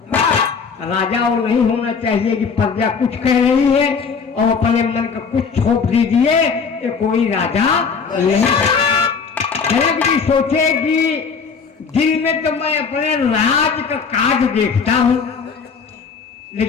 राजा वो नहीं होना चाहिए कि प्रजा कुछ कह रही है और अपने मन का कुछ छोप दीजिए, ये कोई राजा नहीं। जनक जी सोचे कि दिन में तो मैं अपने राज का काज देखता हूं,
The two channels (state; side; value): quieter; right; 5.7 dB